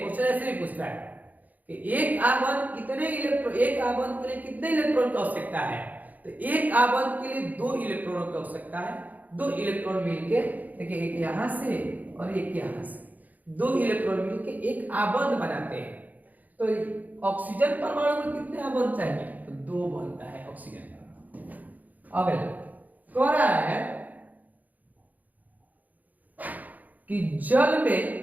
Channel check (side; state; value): left; late; 0.080 ms